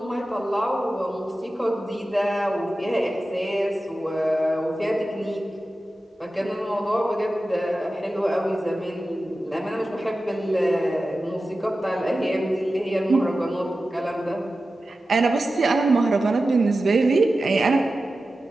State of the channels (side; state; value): both; normal; correlation 0.94